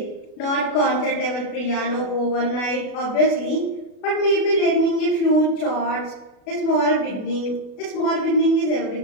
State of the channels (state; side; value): late; right; 37 ms